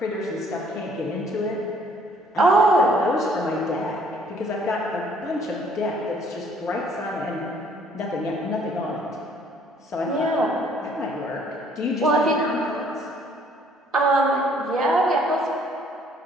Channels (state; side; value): normal; both; correlation 0.61